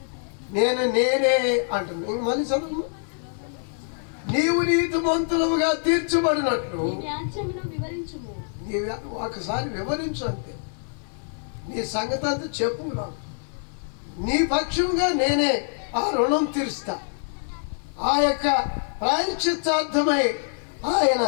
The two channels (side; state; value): right; silent; digital silence